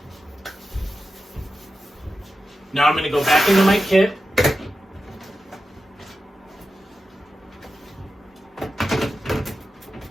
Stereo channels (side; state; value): both; normal; correlation 0.91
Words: Now I'm going to go back into my kit.